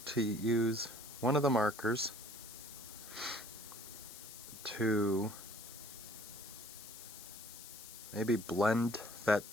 use one of the markers to maybe blend that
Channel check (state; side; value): noise; left; hiss, 13 dB below the sound